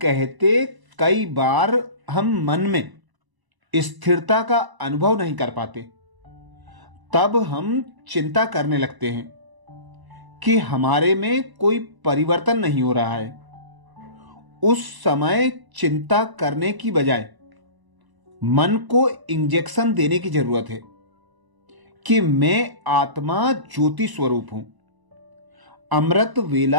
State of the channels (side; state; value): left; late; 1.0 ms